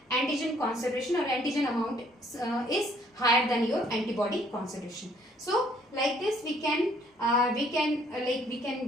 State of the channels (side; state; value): both; normal; correlation 0.63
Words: antigen concentration or antigen amount is higher than your antibody concentration. So like this we can